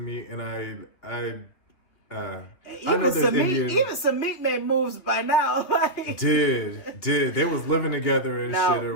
and I know even Samit made moves by now. Like, did they was living together and shit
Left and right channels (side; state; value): right; late; 2.8 ms